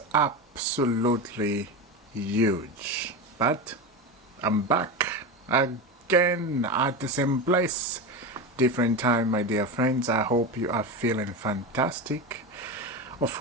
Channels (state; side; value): normal; both; correlation 0.20